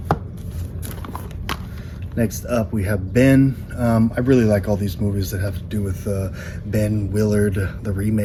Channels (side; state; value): both; identical; correlation 1.00